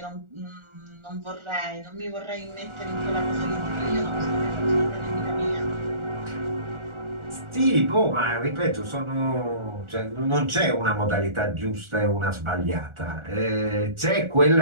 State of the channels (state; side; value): late; left; 1.4 ms